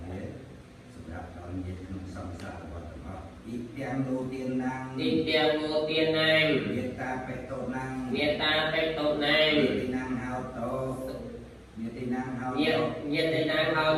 thế sắp đặt đón nhiệt không song xa và tập ít tiền đầu tiên năng ទីទាំងមួយទៀតណាង nhiệt ta phải tổ năng មេត្តាបេតោណាង nhiệt tí năng hao tổ nhiệt tí năng hao ញា tổ ញាតិណាងហោ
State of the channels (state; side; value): identical; both; correlation 1.00